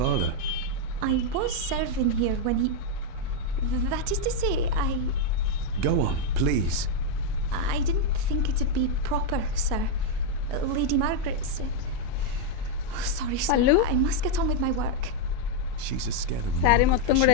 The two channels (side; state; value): both; different; correlation 0.00